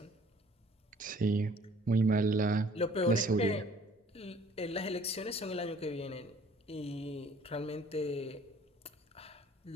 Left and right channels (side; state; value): both; normal; correlation 0.55